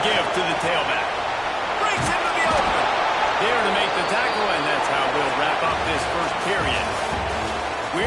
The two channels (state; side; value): identical; both; correlation 1.00